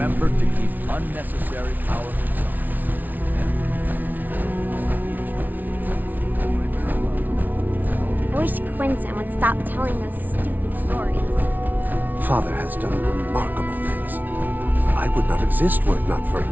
to keep unnecessary power I wish Quentin would stop telling those stupid stories. Father has done remarkable things. I would not exist were it not for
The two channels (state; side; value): late; left; 0.081 ms